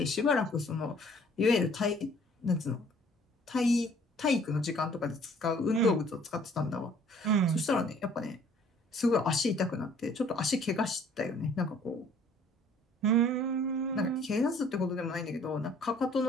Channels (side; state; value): both; normal; correlation 0.56